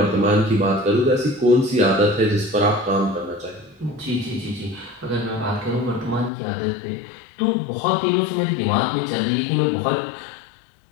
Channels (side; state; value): right; drops out; at 6.3 s